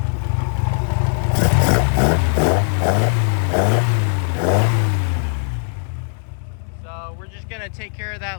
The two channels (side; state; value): right; silent; 66 dB below the other